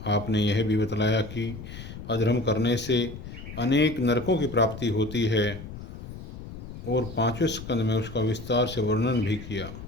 आपने यह भी बतलाया कि अधर्म करने से अनेक नरकों की प्राप्ति होती है और पांचवें स्कंद में उसका विस्तार से वर्णन भी किया।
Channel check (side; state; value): left; noise; rumble, 12 dB below the sound